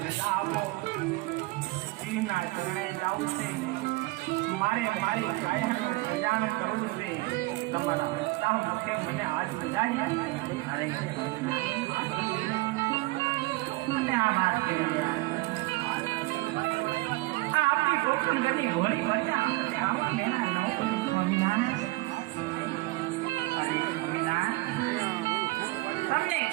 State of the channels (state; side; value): quieter; left; 21.5 dB